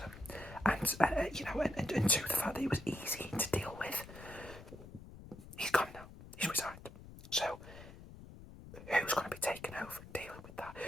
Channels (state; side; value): noise; left; rumble, 15 dB below the sound